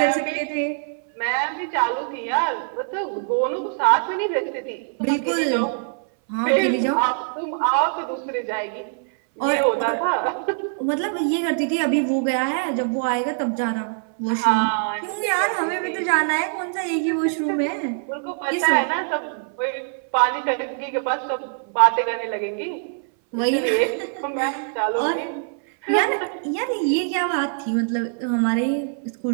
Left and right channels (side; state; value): left; silent; 61 dB below the other